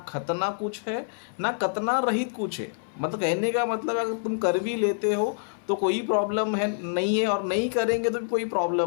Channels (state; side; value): silent; right; 58 dB below the other